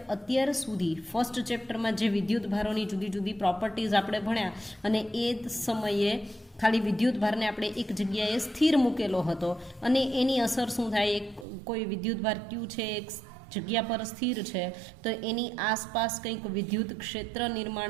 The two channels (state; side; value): drops out; left; at 11.5 s